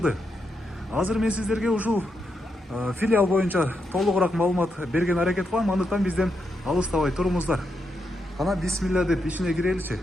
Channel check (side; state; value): both; normal; correlation 0.83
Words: Азыр мен сиздерге ушул филиал боюнча толугураак маалымат берген аракет кылам, андыктан бизден алыстабай туруңуздар. Кана бисмилля деп ичине киреличи.